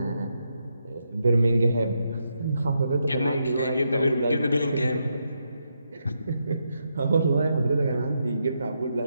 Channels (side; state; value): both; inverted; correlation -0.82